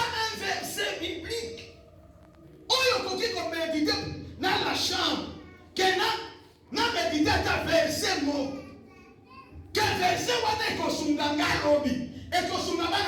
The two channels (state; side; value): identical; both; correlation 1.00